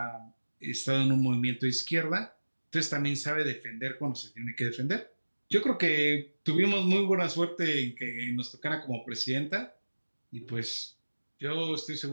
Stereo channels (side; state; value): both; inverted; correlation -1.00